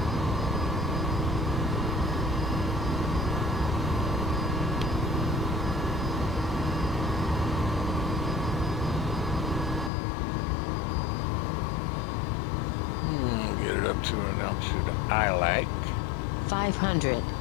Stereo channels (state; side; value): drops out; right; at 9.9 s